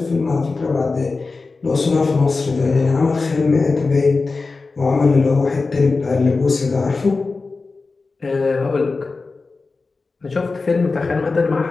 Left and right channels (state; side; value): quieter; right; 4.0 dB